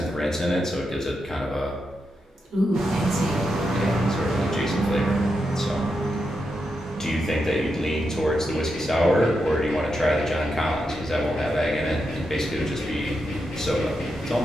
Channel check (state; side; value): normal; both; correlation 0.85